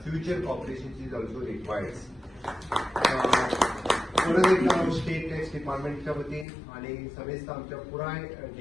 cooperation is also required. परत एकदा state tax डिपार्टमेंटच्या वतीन आणि समेस्त आमच्या पुराय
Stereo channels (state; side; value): drops out; right; at 6.5 s